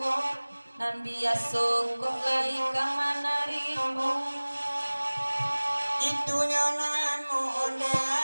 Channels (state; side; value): inverted; both; correlation -1.00